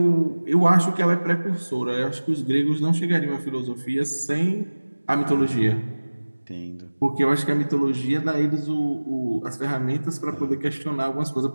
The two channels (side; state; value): both; inverted; correlation -1.00